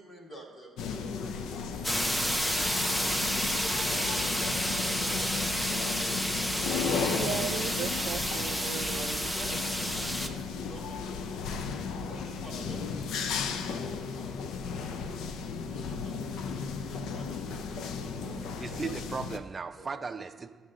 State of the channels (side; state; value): both; normal; correlation 0.75